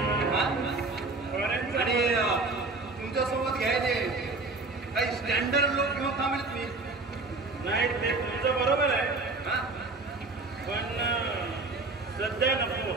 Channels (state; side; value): quieter; left; 3.5 dB